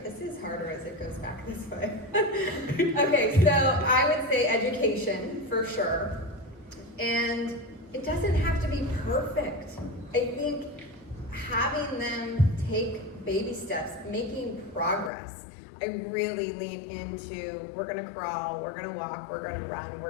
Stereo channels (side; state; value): right; drops out; at 15.1 s